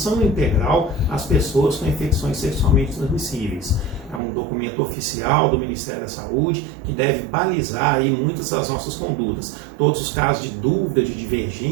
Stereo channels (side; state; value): left; drops out; at 4.2 s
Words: Integral às Pessoas com Infecções Sexualmente Transmissíveis. É um documento oficial do Ministério da Saúde que deve balizar aí muitas das nossas condutas. Todos os casos de dúvida, de